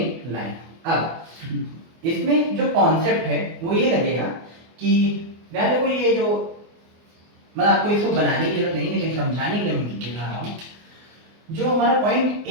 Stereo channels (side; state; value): left; late; 24 ms